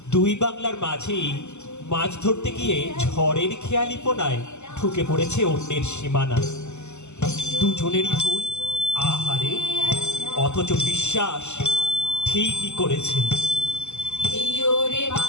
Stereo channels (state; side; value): late; right; 0.83 ms